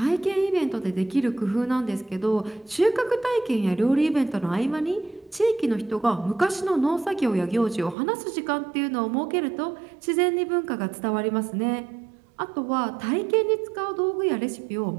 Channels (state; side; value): drops out; left; at 8.0 s